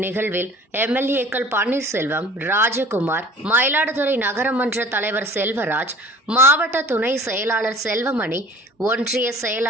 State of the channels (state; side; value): normal; both; correlation 0.47